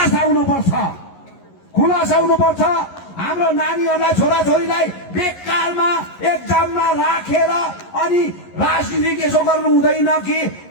हुनुपर्छ। हाम्रो नानीहरूलाई, छोराछोरीलाई बेकारमा एक्जाममा राखेर अनि राजनीति यसो गर्नु हुँदैन कि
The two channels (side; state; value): right; late; 11 ms